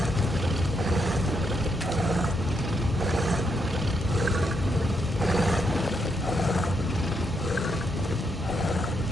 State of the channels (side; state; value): both; normal; correlation 0.79